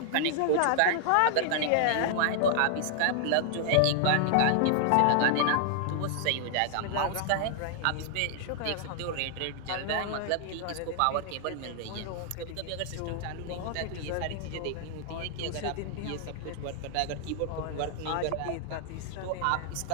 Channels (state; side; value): different; both; correlation -0.01